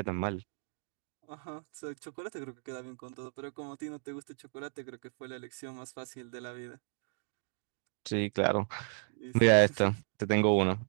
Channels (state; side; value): silent; left; digital silence